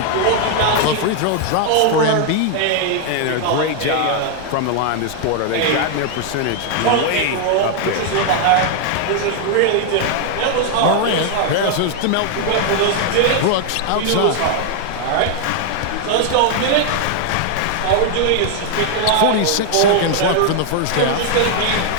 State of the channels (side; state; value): both; different; correlation 0.00